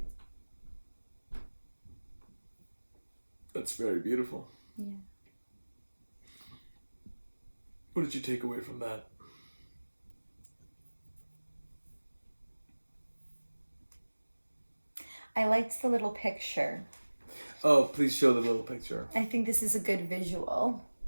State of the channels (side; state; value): both; inverted; correlation -1.00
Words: That's very beautiful. Yeah. What did you take away from that? I liked the little picture. Oh, please show the little picture. I think this is a good visual.